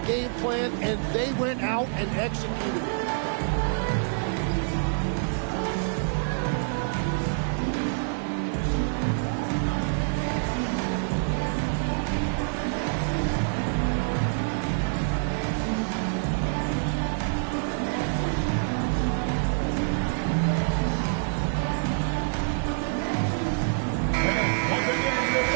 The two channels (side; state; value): left; silent; 60 dB below the other